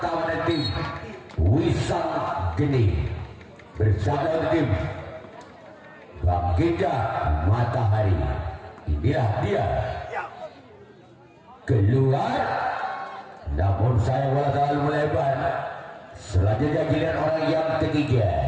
dari tim Wisang Geni bersama tim Bangkitnya Matahari. Inilah dia keluar, namun saya bola terlalu melebar. Selanjutnya giliran orang yang ketiga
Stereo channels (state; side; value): identical; both; correlation 1.00